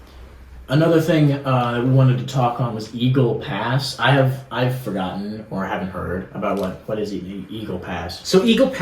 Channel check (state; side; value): identical; both; correlation 1.00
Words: Another thing that we wanted to talk on was Eagle Pass. I've forgotten or haven't heard about what is Eagle Pass. So Eagle